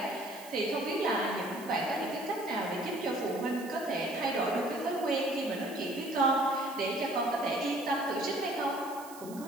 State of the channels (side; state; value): right; noise; hiss, 17 dB below the sound